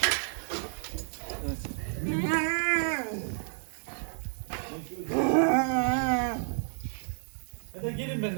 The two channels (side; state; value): left; silent; digital silence